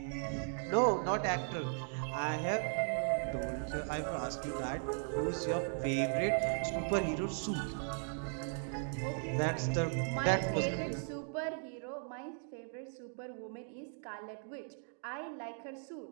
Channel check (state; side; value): silent; left; 53 dB below the other